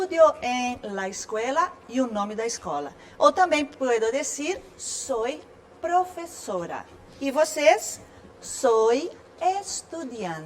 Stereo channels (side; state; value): both; identical; correlation 1.00